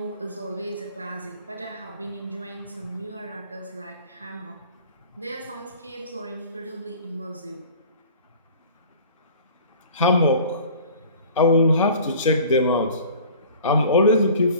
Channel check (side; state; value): both; inverted; correlation -0.46